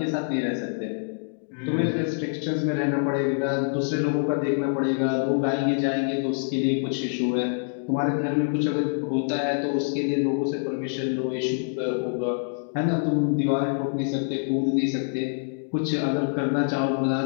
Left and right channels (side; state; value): right; silent; digital silence